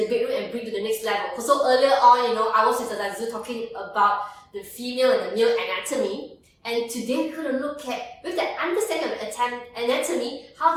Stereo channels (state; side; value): identical; both; correlation 1.00